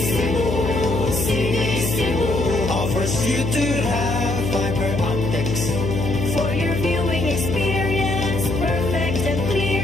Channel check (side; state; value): left; noise; hum, 2 dB below the sound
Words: Sinisibo. Offers you to have fiber optics. For your viewing experience, perfect and